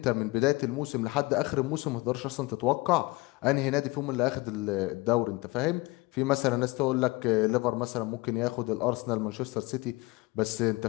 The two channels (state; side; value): quieter; right; 23.1 dB